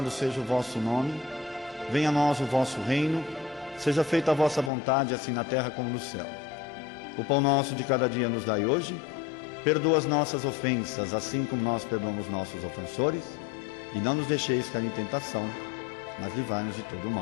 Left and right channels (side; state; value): right; drops out; at 4.7 s